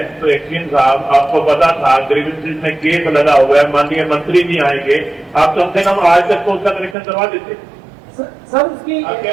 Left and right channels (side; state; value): left; drops out; at 7.0 s